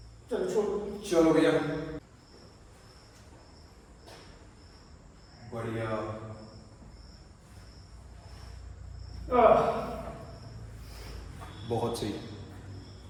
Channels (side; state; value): both; identical; correlation 1.00